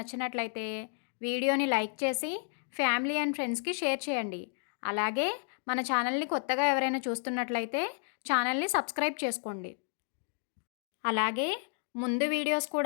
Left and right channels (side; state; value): right; silent; 56 dB below the other